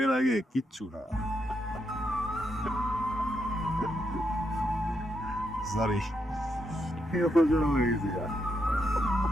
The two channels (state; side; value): normal; both; correlation 0.80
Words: আগে কিচ্ছু না। সরি, হয়ে গেছে।